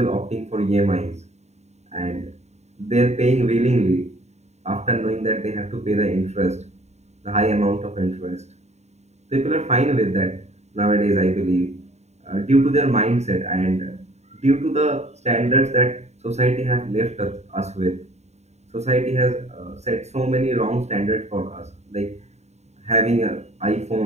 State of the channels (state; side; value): late; left; 0.32 ms